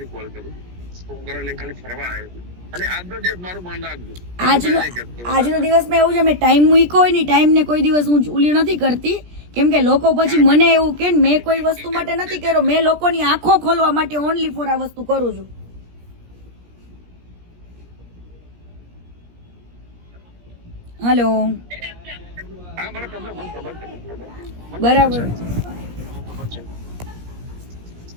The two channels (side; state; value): left; late; 17 ms